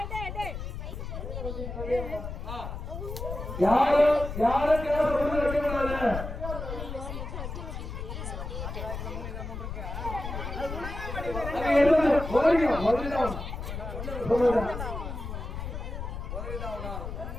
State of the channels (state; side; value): noise; left; rumble, 6 dB below the sound